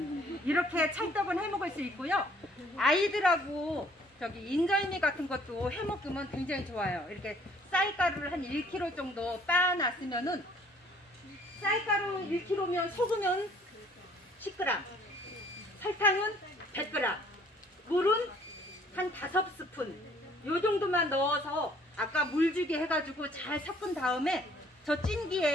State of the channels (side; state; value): both; normal; correlation 0.59